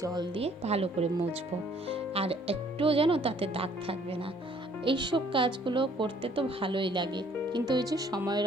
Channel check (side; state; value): both; normal; correlation 0.60